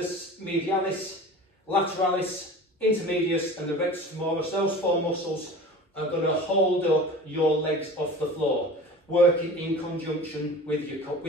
medialis, lateralis, intermedius, and the rectus femoris. Those 4 muscles are going to hold up your legs off the floor, working in conjunction with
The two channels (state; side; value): normal; both; correlation 0.38